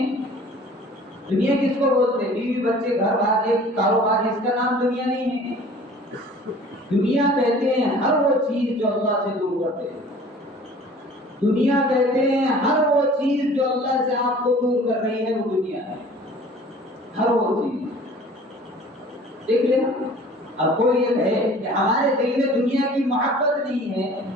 دنیا کس کو بولتے؟ بیوی بچے گھر بار ایک کاروبار، اس کا نام دنیا نہیں ہے۔ دنیا کہتے ہیں ہر وہ چیز جو اللہ سے دور کرتے ہیں، دنیا کہتے ہیں ہر وہ چیز جو اللہ سے آپ کو دور کر رہی ہے، وہ دنیا ہے، ہر وہ چیز۔ دیکھ لینا، اب کوئی یہ کہے کہ ہمارے دل میں دنیا کی محبت نہیں ہے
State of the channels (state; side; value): normal; both; correlation 0.48